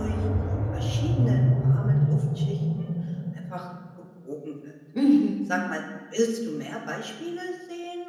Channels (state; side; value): identical; both; correlation 1.00